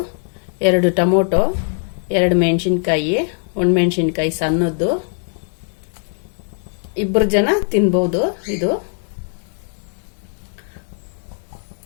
2 ಟೊಮೊಟೊ, 2 ಮೆಣಸಿನ್ಕಾಯಿ, 1 ಮೆಣಸಿನ್ಕಾಯಿ ಸಣ್ಣದ್ದು, 2 ಜನ ತಿನ್ಬೋದು. ಇದು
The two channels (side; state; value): right; silent; 57 dB below the other